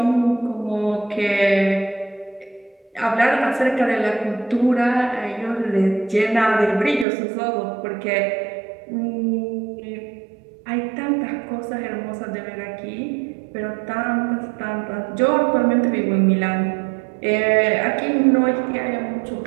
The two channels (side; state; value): left; drops out; at 7.1 s